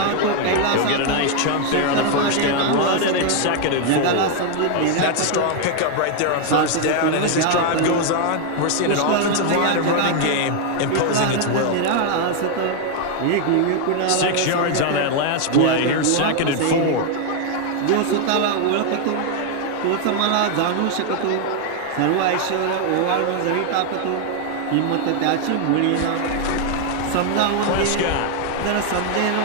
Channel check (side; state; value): both; different; correlation 0.01